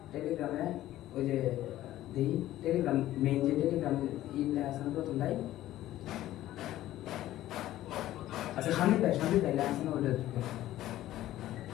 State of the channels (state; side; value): quieter; right; 14.3 dB